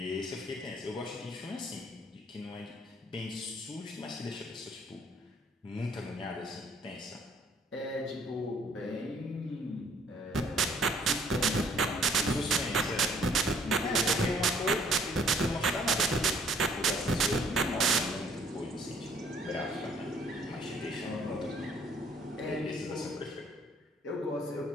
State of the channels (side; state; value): both; normal; correlation 0.61